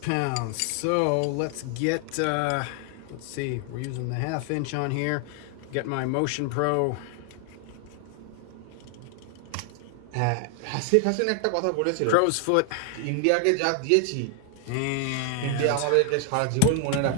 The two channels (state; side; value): different; both; correlation 0.00